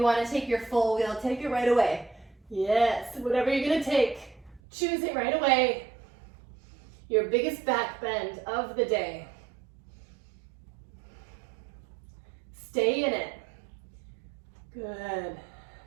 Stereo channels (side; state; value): left; drops out; at 4.6 s